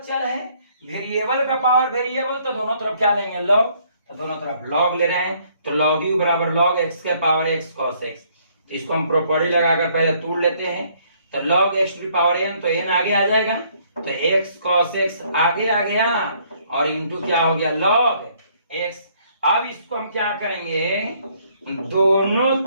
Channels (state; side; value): inverted; both; correlation -0.65